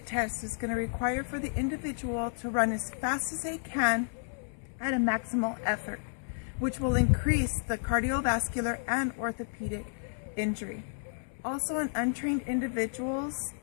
test is going to require for the individual to run as fast as they can at a maximal effort, which will increase the cardiovascular and orthopedic injury. Also, untrained individuals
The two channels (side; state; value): right; silent; 57 dB below the other